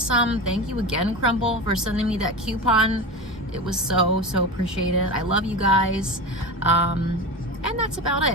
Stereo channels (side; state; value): both; normal; correlation 0.25